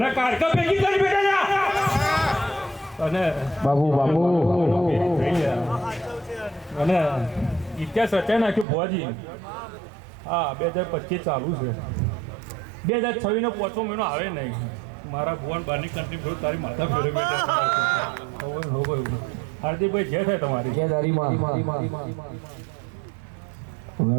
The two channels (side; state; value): left; drops out; at 8.7 s